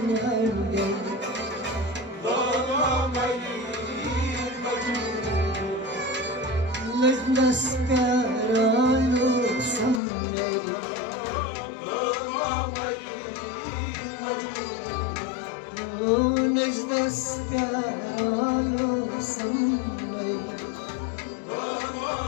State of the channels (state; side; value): drops out; right; at 10.0 s